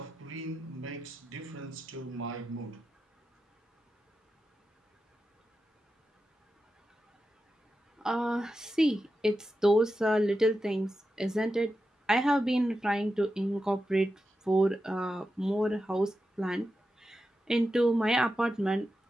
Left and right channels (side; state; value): both; normal; correlation 0.90